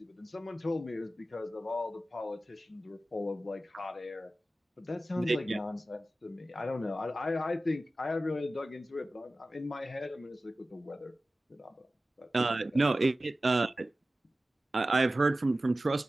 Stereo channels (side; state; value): both; normal; correlation 0.95